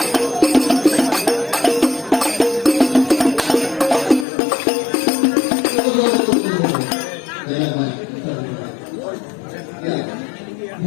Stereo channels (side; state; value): right; drops out; at 4.2 s